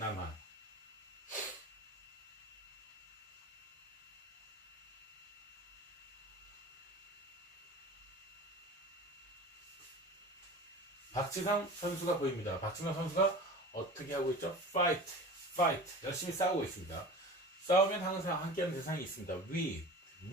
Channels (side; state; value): both; normal; correlation 0.36